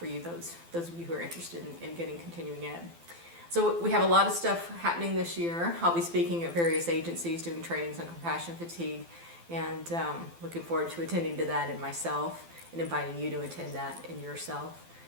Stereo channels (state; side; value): late; left; 12 ms